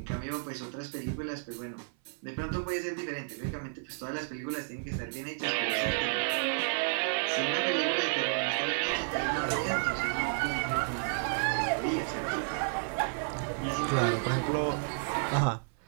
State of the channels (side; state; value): left; silent; 57 dB below the other